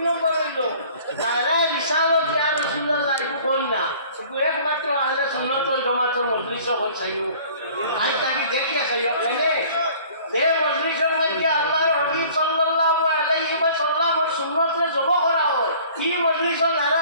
নম্বর হইল নারায় বিশালত ইয়া রাসূলুল্লাহ একটু কই না শুধু একমাত্র আহলে সুন্নাত ওয়াল জামাতের মজলিস হল চাইও আজ তাকে দেখিয়া চাইও কেনে যে মজলিসের মধ্যে আল্লাহর হাবিব সাল্লাল্লাহু আলাইহি ওয়াসাল্লামের সুন্নতরে জমা করা হয় এই মজলিস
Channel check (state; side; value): inverted; both; correlation -0.50